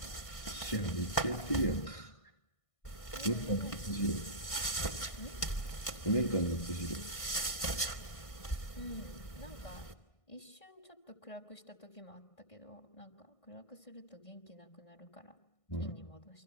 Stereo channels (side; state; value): right; late; 1.6 ms